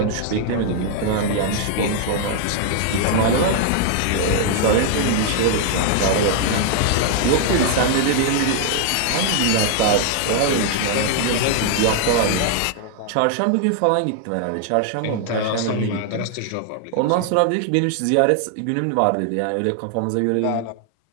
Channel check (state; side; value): different; both; correlation 0.00